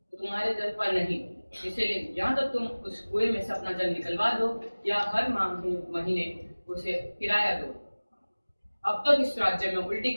तुम्हारे जल पर नहीं। इसलिए या तो तुम उस कुएं में से अपना जल निकलवा दो या हर महीने उसे किराया दो। अब तक इस राज्य में उल्टी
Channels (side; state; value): both; inverted; correlation -1.00